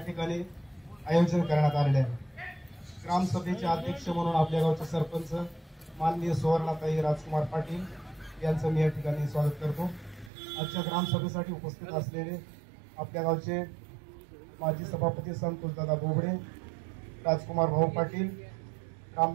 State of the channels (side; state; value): left; drops out; at 10.3 s